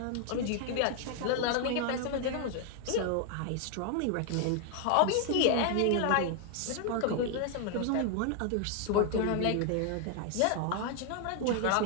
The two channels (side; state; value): both; different; correlation 0.00